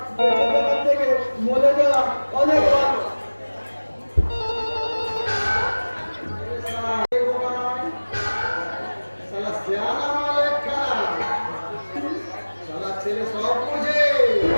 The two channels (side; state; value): both; inverted; correlation -1.00